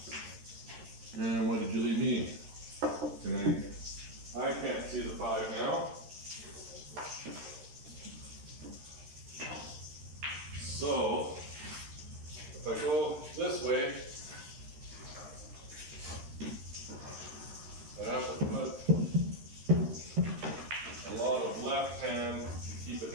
And what did you leave me? I can't see the 5 now. So, if I go this way, I have to put a lot of left hand to keep it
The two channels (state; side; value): late; left; 13 ms